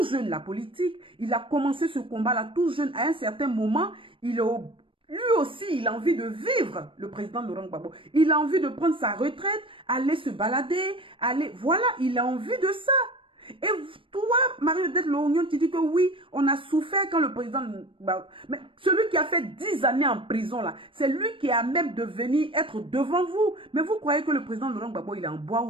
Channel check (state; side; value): late; left; 0.25 ms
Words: jeune la politique, il a commencé ce combat-là tout jeune. À un certain moment, lui aussi, il a envie de vivre, le président Laurent Gbagbo. Il a envie de prendre sa retraite, aller se balader, voilà, il a envie de ça. Et toi, Marie-Odette Lorgnon, tu dis que oui, on a souffert quand le président... Mais celui qui a fait 10 années en prison, là, c'est lui qui a même de venir être devant vous. Mais vous croyez que le président Laurent Gbagbo, il est en bois